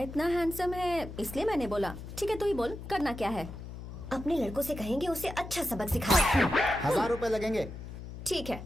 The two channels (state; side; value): noise; left; hum, 11 dB below the sound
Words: हैंडसम है इसलिए मैंने बोला। ठीक है, तू ही बोल, करना क्या है? अपने लड़कों से कहेंगे उसे अच्छा सबक सिखाए। 1000 रुपए लगेंगे। ठीक है।